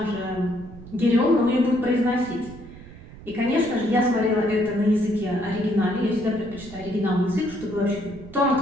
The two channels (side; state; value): right; noise; rumble, 17 dB below the sound